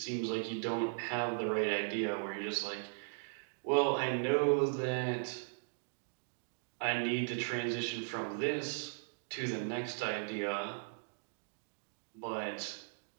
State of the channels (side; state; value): left; silent; digital silence